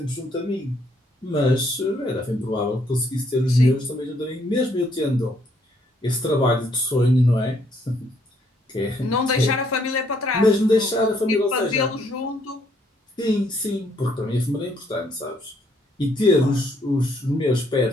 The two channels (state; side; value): normal; both; correlation 0.69